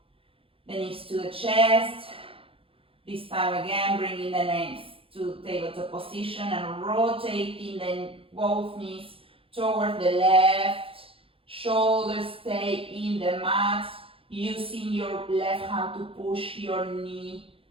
the knees to the chest. This time again, bringing the legs to tabletop position and rotating both knees towards the left. Shoulders stay in the mat. Using your left hand to push your knee,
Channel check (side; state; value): left; late; 0.27 ms